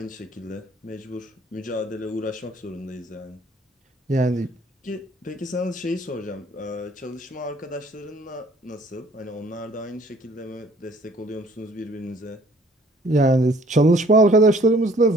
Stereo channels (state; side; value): normal; both; correlation 0.57